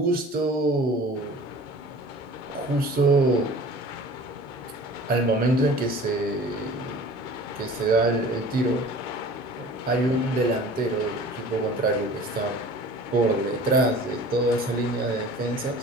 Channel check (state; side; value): normal; both; correlation 0.43